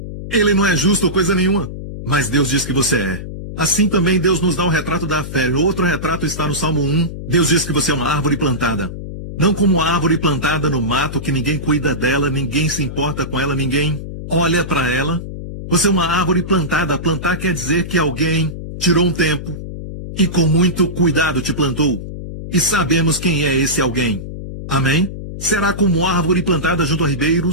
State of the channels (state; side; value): noise; left; hum, 9 dB below the sound